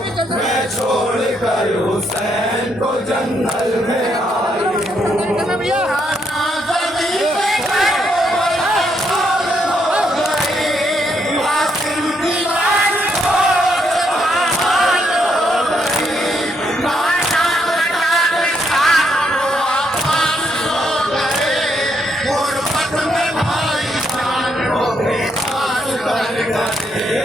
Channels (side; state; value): both; normal; correlation 0.75